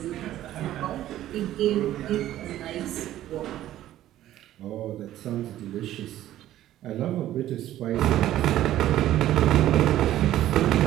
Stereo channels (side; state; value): left; quieter; 13.3 dB